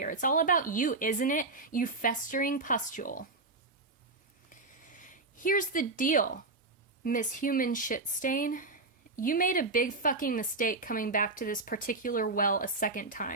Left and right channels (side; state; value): left; quieter; 3.4 dB